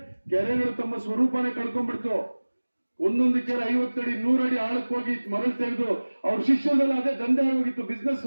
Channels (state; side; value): inverted; both; correlation -1.00